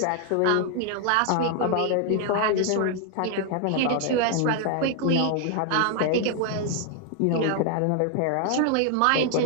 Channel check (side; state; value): both; different; correlation 0.00